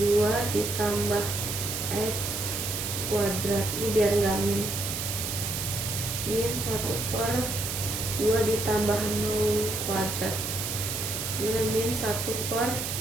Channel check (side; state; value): right; noise; hiss, 3 dB below the sound